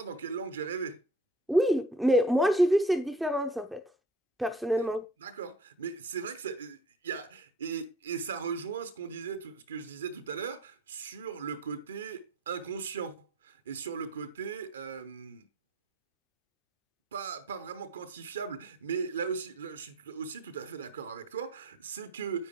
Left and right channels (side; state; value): both; normal; correlation 0.52